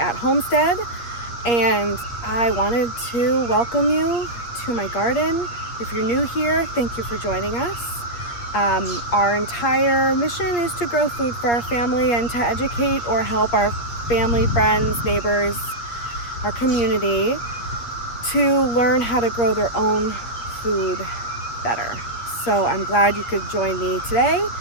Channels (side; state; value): right; late; 8.5 ms